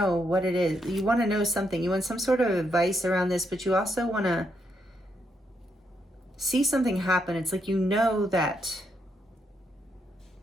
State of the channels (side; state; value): both; normal; correlation 0.78